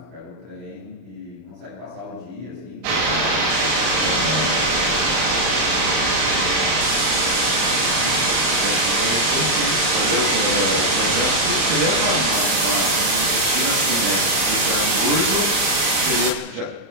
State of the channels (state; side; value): late; left; 31 ms